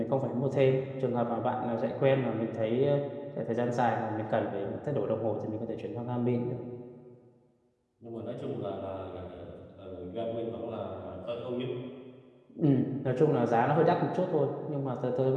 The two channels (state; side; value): identical; both; correlation 1.00